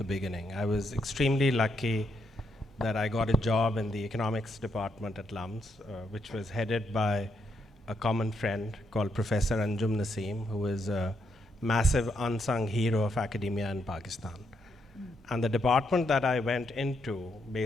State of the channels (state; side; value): normal; both; correlation 0.78